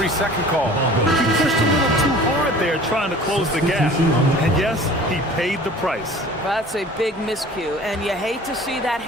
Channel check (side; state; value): both; normal; correlation 0.45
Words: call. He pushed a little too hard there trying to close the gap. And yes, he paid the price. That's a big miscue, and you hate to see that